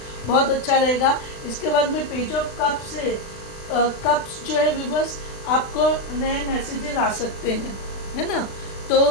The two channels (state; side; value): late; right; 36 ms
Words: बहुत अच्छा रहेगा. इसके बाद में पेज ऑफ कप्स है. कप्स जो है व्यूअर्स, आपको नए मैसेजेस आ सकते हैं, है ना.